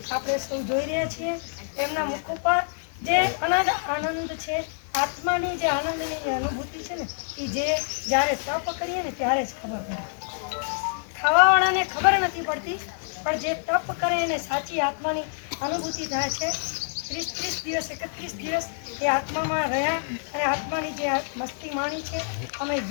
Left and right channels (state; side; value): silent; right; digital silence